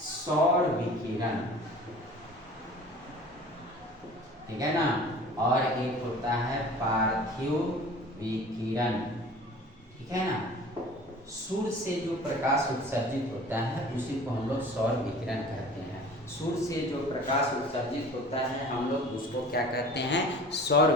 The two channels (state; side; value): normal; both; correlation 0.43